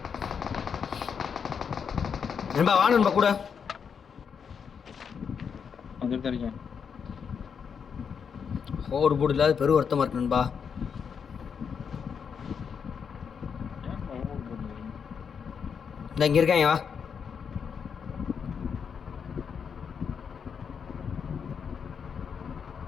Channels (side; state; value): right; quieter; 6.7 dB